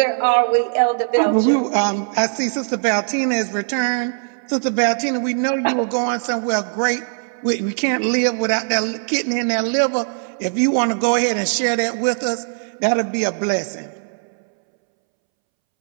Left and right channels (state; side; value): silent; left; 65 dB below the other